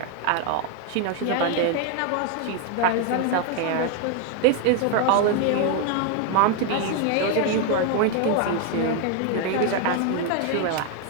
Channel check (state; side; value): different; both; correlation 0.01